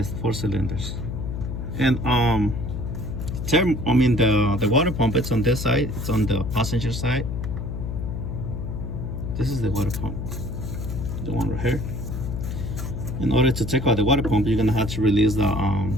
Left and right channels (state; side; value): noise; left; hum, 5 dB below the sound